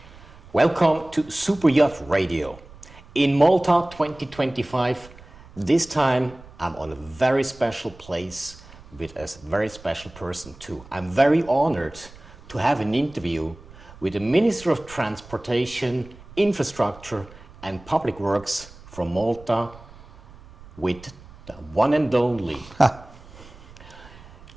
Welcome to Super Yacht Radio. In Malta 2025, this time I'm on a very special place with a very special person too. I'm very honored to have an interview with the Minister of Transportation, Infrastructure and Public Works from Malta, with the one and only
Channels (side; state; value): right; noise; rumble, 21 dB below the sound